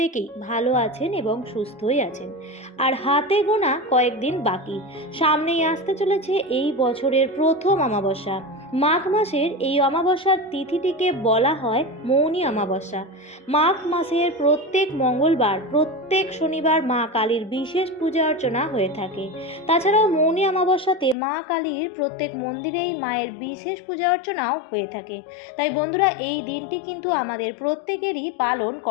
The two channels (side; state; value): right; drops out; at 21.2 s